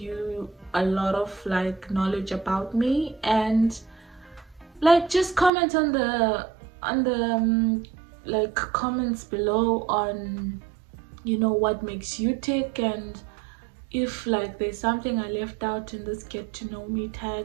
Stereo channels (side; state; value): left; drops out; at 5.5 s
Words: a lot of knowledge about me, and just comment on the comments below on what makes you tick, and if there's something I left out in this get to know me